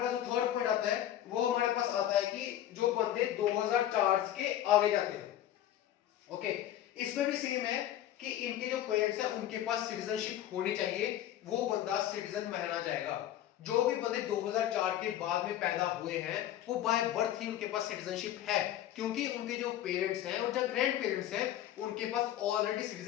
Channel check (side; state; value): right; quieter; 12.2 dB